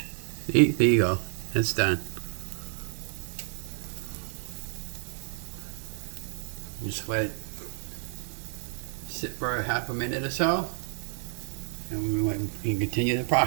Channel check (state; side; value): silent; left; 58 dB below the other